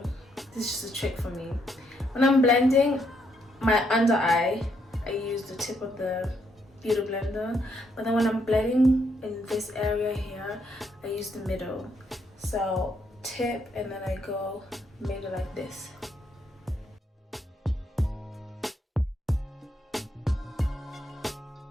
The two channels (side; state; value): both; normal; correlation 0.75